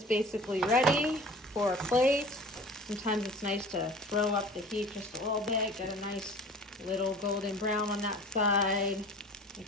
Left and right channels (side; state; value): both; normal; correlation 0.42